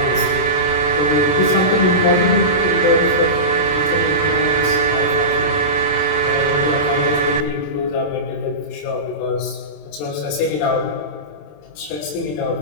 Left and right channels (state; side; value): late; right; 27 ms